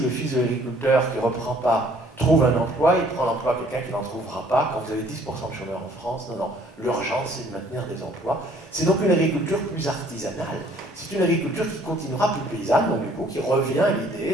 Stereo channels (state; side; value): normal; both; correlation 0.59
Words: fils de l'agriculteur qui ne reprend pas trouve un emploi, il prend l'emploi à quelqu'un qui n'en trouvera pas. Quand vous avez 10% de chômeurs en France, non, l'urgence c'est de maintenir des emplois. C'est donc une agriculture plus artisanale, c'est une agriculture qui continuera plus paysanne, donc du coup qui revient à